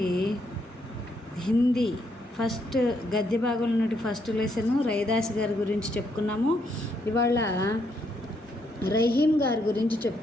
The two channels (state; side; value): normal; both; correlation 0.75